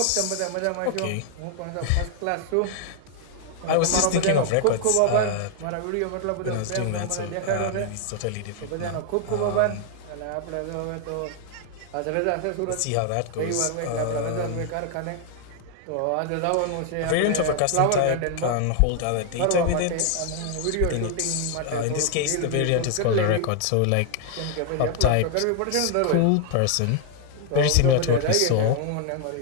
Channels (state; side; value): different; both; correlation 0.00